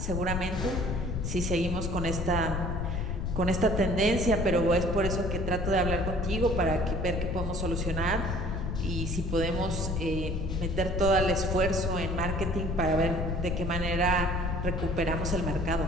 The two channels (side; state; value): left; noise; rumble, 2 dB below the sound